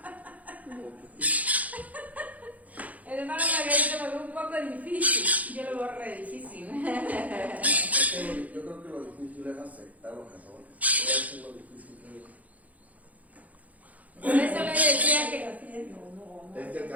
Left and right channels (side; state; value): left; late; 0.074 ms